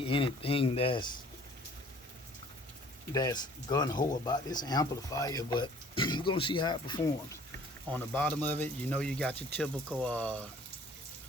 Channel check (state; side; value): normal; both; correlation 0.54